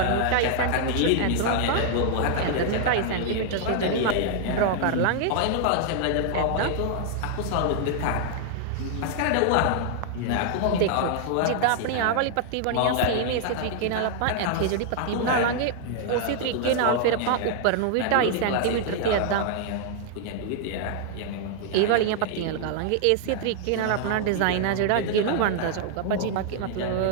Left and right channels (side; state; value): both; different; correlation -0.01